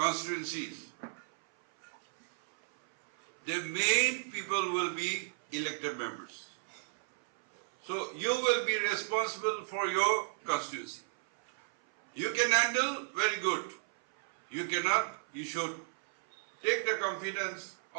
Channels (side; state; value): left; silent; 55 dB below the other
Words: the main people will be elected members. So you will be responsible for your constituency. You can handle, very good. You cannot, you should take the confidence